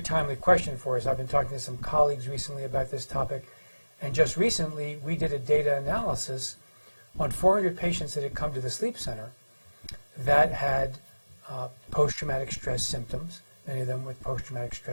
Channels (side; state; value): both; inverted; correlation -1.00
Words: question for us. I've been talking to some colleagues recently about this topic, and just recently we did a data analysis on 400 patients that had come to the sleep center that had post-traumatic stress symptoms, many of them with post-traumatic